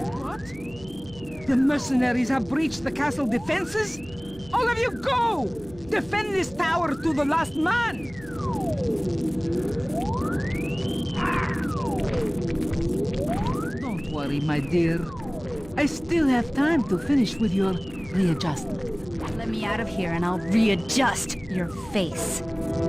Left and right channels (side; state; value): right; noise; hum, 20 dB below the sound